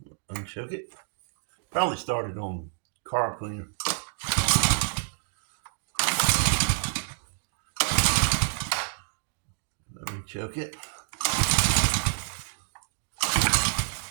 Unchoke it. Probably started on carb cleaner. Let me choke it.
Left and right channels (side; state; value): left; silent; digital silence